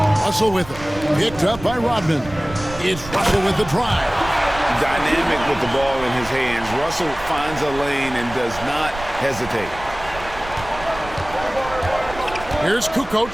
Russell with it. Picked up by Rodman. It's Russell with the drive. Dynamic with the ball in his hands. Russell finds a lane and does not hesitate. Here's Kukoc.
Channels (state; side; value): noise; right; rumble, 14 dB below the sound